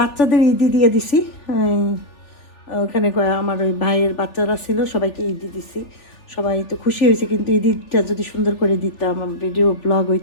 ঈদি দিয়ে দিছি, ওখানে আমার ওই ভাইয়ের বাচ্চারা ছিল, সবাইকে ঈদি দিছি, সবাই তো খুশি হয়েছে। কিন্তু ঈদটা যদি সুন্দর করে দিতাম, ভিডিও ব্লগ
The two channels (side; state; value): right; late; 3.4 ms